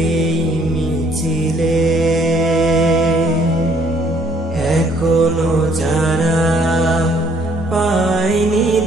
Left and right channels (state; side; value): normal; both; correlation 0.64